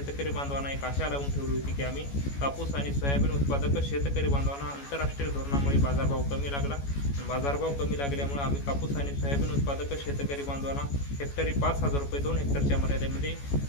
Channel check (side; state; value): right; late; 14 ms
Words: बांधवांना एक आशा लावून ठेवली होती की आम्ही कापूस आणि सोयाबीन उत्पादक शेतकरी बांधवांना आंतरराष्ट्रीय धोरणामुळे बाजारभाव कमी लागला, बाजारभाव कमी लागल्यामुळे आम्ही कापूस आणि सोयाबीन उत्पादक शेतकरी बांधवांना हेक्टरी 5,000 रुपये 2 हेक्टरच्या मर्यादेमध्ये